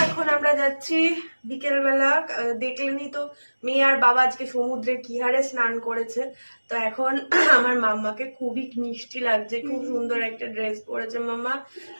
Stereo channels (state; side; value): inverted; both; correlation -1.00